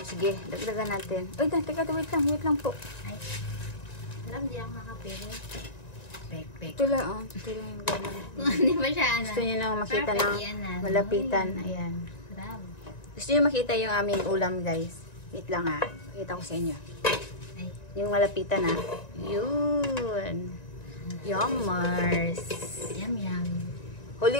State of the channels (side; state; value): right; late; 1.9 ms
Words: Sige, dagdagan natin. Uy, teka, wait lang po. Ay, sarap, hindi ako makapili. Pek. Ito lang, oh. Ito lang yung gano'n. Kung hindi ba siya, ano? Gusto niyo lang makita Perfect ng yan, ah. malapitan. Ayan. Sarap. Gusto niyo makita yung aming ulam, guys. Wait lang, ha. Pakita ko sa inyo. Ay, Yung malapitan, ha. Yun. Yummers. yum.